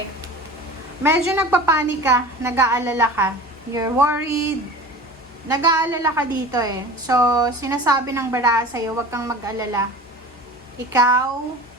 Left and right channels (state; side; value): normal; both; correlation 0.38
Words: Medyo nagpapanik ka, nag-aalala ka. You're worried. Nag-aalala ka dito So, sinasabi ng bara sa'yo, huwag kang mag-alala. Ikaw,